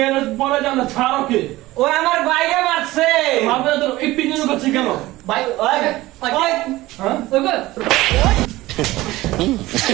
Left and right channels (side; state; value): left; quieter; 18.0 dB